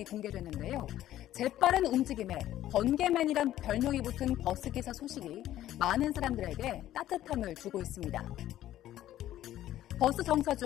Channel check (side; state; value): right; quieter; 13.1 dB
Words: 공개됐는데요. 재빠른 움직임에 번개맨이란 별명이 붙은 버스기사 소식이 많은 사람들에게 따뜻함을 주고 있습니다. 버스 정차